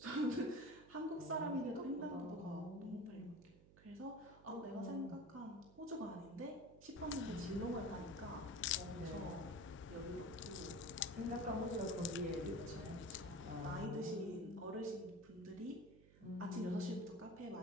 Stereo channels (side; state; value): right; noise; hum, 21 dB below the sound